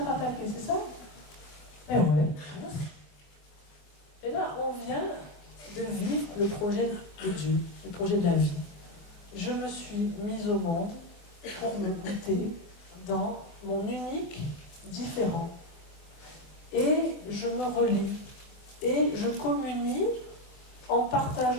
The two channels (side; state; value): right; late; 24 ms